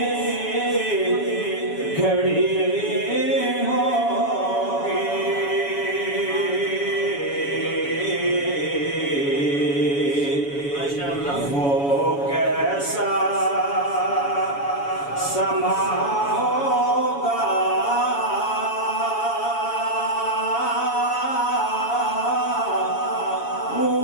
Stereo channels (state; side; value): late; right; 7.1 ms